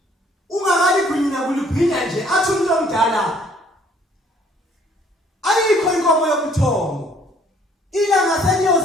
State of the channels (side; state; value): both; normal; correlation 0.60